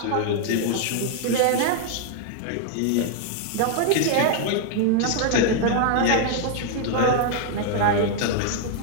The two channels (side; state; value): both; different; correlation 0.00